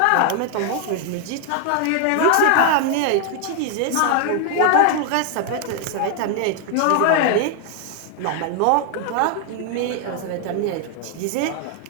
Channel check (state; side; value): different; both; correlation 0.00